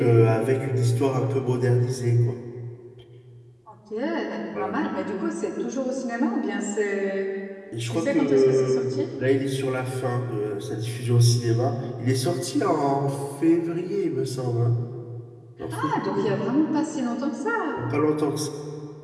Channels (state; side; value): identical; both; correlation 1.00